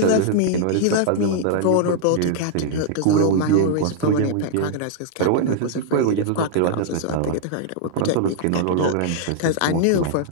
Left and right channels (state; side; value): different; both; correlation -0.01